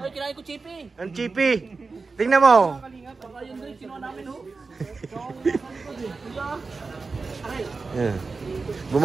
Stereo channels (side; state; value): left; quieter; 4.2 dB